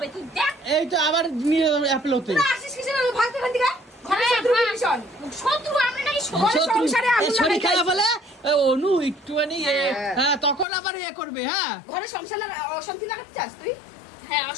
তুই দেখ। এই তো আবার নিয়ে অ্যাপেল হতে তোরা আসিস কিসের জন্য? ভাগতে ভাগতে গা ঘরে হ্যাঁ, শত্রু হ্যাঁ। ভীষণ। শত্রু আমরা নাকি ঘরে সংসারে আগুন শরীর লাগাই খারাপ যাইছি। হলে অনু একটুখানি হ্যাঁ তখন আবার করবে হ্যাঁ ঘরে সংসার অশান্তি লাগাতে চাস তুই? হ্যাঁ,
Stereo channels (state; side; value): drops out; right; at 10.7 s